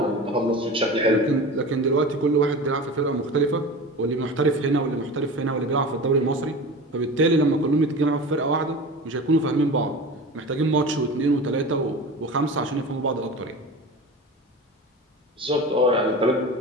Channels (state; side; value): normal; both; correlation 0.32